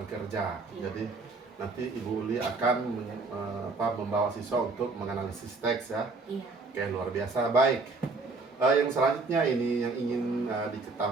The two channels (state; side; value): quieter; left; 3.8 dB